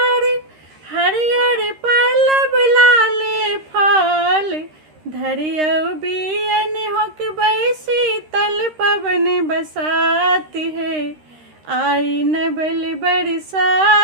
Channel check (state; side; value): late; left; 13 ms